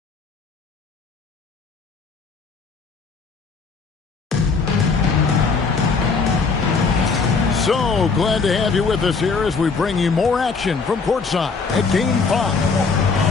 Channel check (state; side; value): quieter; right; 4.8 dB